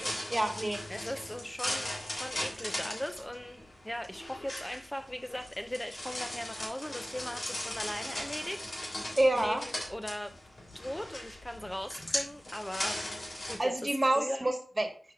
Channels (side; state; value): both; normal; correlation 0.97